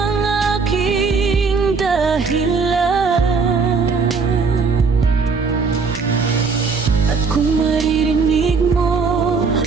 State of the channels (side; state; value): left; quieter; 4.9 dB